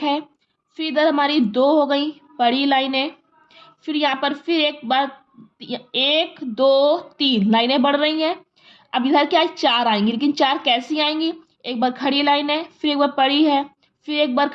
है, फिर इधर हमारी 2 हो गई बड़ी लाइनें, फिर यहाँ पर फिर एक बार 1 2 3 लाइनें बढ़ रही हैं। अब इधर क्या है, 4 आएंगी, लेकिन 4 कैसी आएंगी, एक बार खड़ी लाइन है, फिर एक बार पड़ी है, फिर एक बार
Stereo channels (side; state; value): both; identical; correlation 1.00